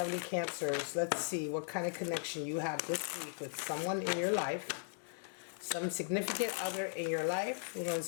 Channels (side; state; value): right; silent; digital silence